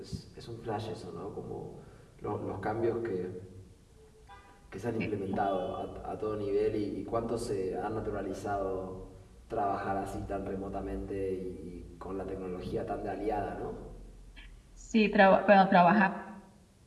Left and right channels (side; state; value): both; identical; correlation 1.00